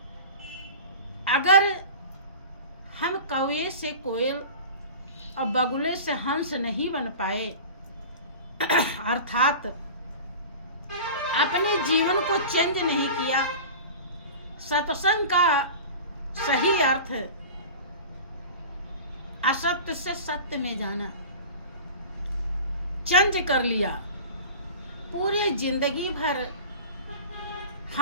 अगर हम कौवे से कोयल और बगुले से हंस नहीं बन पाए, अर्थात अपने जीवन को चेंज नहीं किया, सत्संग का सही अर्थ असत्य से सत्य में जाना चेंज कर लिया, पूरी जिंदगी भर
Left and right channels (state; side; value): inverted; both; correlation -0.36